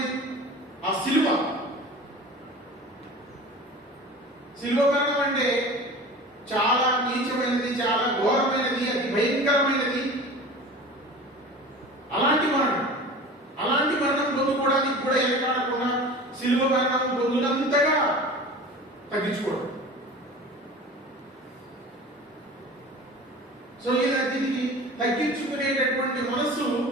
ఆ శిలువ మరణం అంటే చాలా నీచమైనది, చాలా ఘోరమైనది, అతి భయంకరమైనది. అలాంటి మరణం పొందుకోవడానికి కూడా ఎనకాడకుండా శిలువ మరణం పొందినంతగా తగ్గించుకోవడం. సో దీనికి తగ్గించుకునేటటువంటి మనస్సు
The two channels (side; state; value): both; normal; correlation 0.38